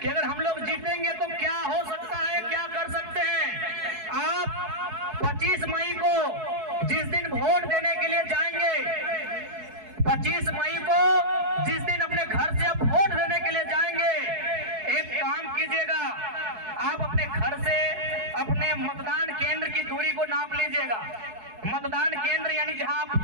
कि अगर हम लोग जीतेंगे तो क्या हो सकता है, क्या कर सकते हैं। आप 25 मई को जिस दिन वोट देने के लिए जाएंगे, 25 मई को जिस दिन अपने घर से आप वोट देने के लिए जाएंगे, एक काम कीजिएगा, आप अपने घर से अपने मतदान केंद्र की दूरी को नाप लीजिएगा। मतदान केंद्र यानी जहां आप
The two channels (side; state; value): left; late; 4.7 ms